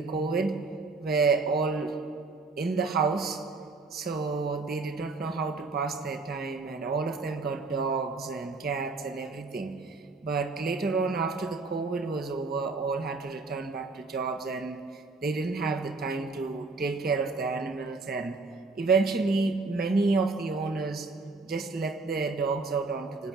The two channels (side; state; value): left; quieter; 3.8 dB